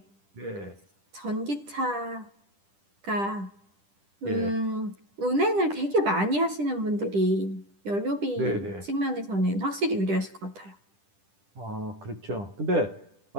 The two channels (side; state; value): left; late; 10 ms